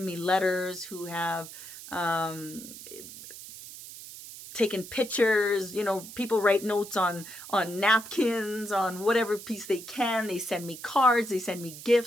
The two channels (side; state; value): right; noise; hiss, 14 dB below the sound